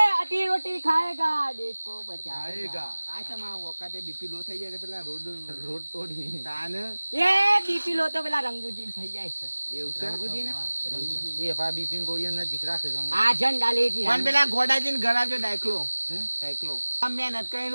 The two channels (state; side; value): inverted; both; correlation -1.00